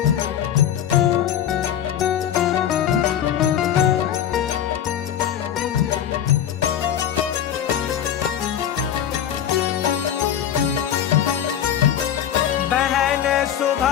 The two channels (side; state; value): right; quieter; 9.9 dB